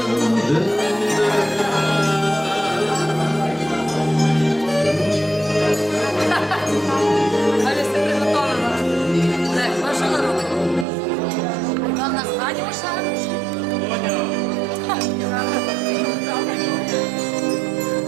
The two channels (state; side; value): drops out; left; at 10.9 s